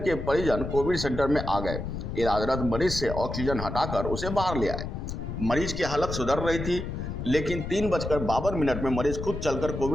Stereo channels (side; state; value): left; noise; rumble, 6 dB below the sound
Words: परिजन कोविड सेंटर में आ गए। इलाजरत मरीज से ऑक्सीजन हटाकर उसे बाहर ले आए। मरीज की हालत सुधर रही थी, लेकिन 3:52 में मरीज खुद चलकर